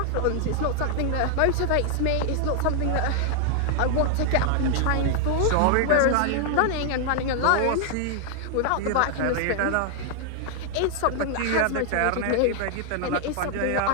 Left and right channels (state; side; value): different; both; correlation 0.00